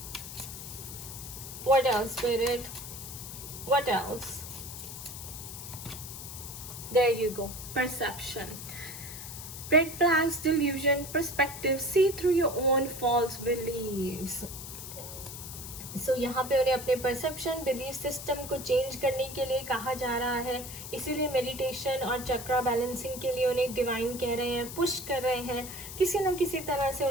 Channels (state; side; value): noise; left; hiss, 10 dB below the sound